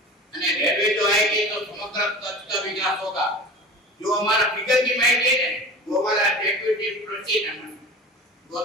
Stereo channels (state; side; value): normal; both; correlation 0.35